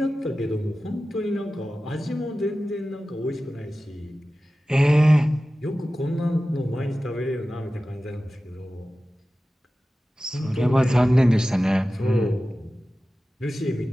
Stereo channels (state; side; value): normal; both; correlation 0.95